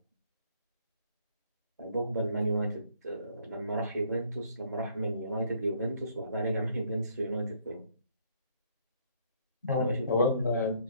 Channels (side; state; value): both; inverted; correlation -0.65